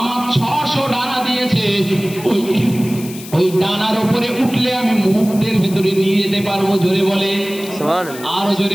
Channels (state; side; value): noise; left; hiss, 15 dB below the sound